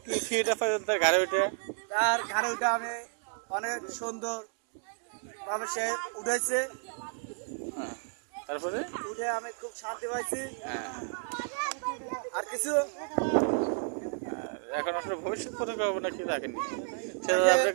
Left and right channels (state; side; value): silent; left; 56 dB below the other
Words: কি ফিটা পাইছেন তার ঘরে উঠে? তার ঘরে উঠে আমি অনেক সুন্দর ভাবে সে উঠেছে, হ্যাঁ, তারপরে উঠে আমি খুব শান্তি পাইছি। হ্যাঁ, আর কিছু এখন আসলে ভবিষ্যৎ পরিকল্পনা কি রাখেনি, সেটা